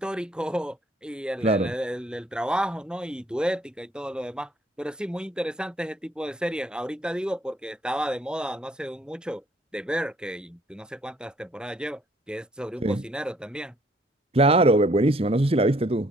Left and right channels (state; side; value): normal; both; correlation 0.62